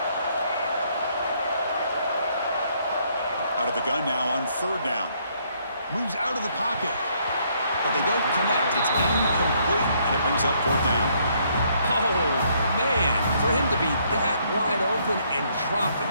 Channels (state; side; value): inverted; both; correlation -0.69